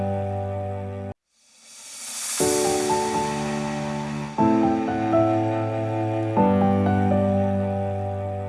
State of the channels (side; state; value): both; identical; correlation 1.00